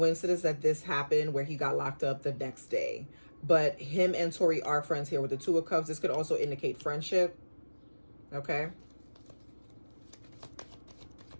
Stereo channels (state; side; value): inverted; both; correlation -1.00